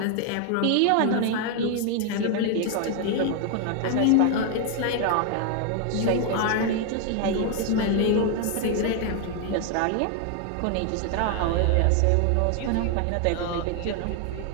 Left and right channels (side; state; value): both; different; correlation 0.00